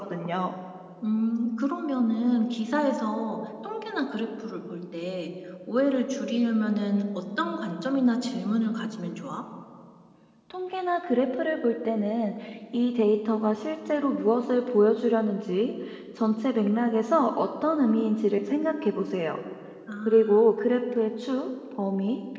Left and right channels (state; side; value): identical; both; correlation 1.00